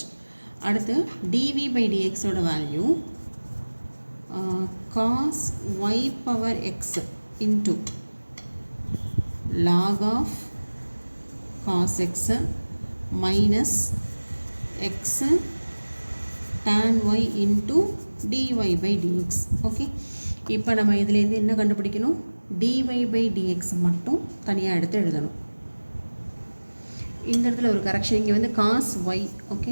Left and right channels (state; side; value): inverted; both; correlation -1.00